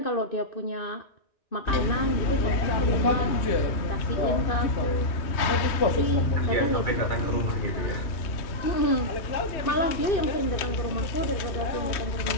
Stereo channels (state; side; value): late; right; 3.1 ms